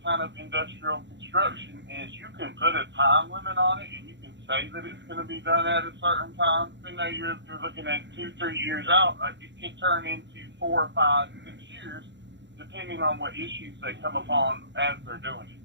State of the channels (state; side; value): late; left; 0.52 ms